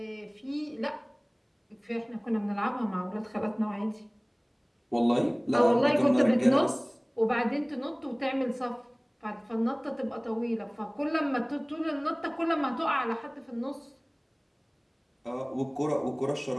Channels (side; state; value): both; identical; correlation 1.00